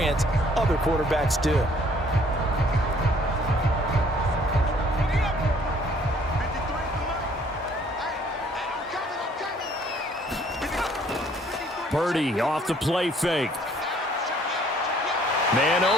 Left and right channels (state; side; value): normal; both; correlation 0.60